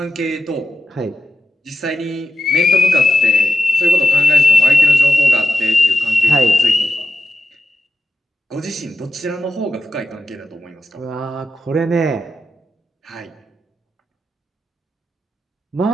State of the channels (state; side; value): normal; both; correlation 0.89